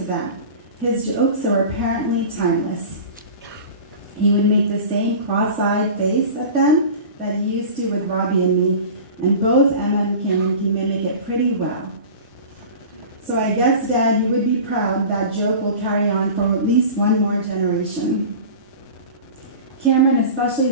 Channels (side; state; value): both; inverted; correlation -0.36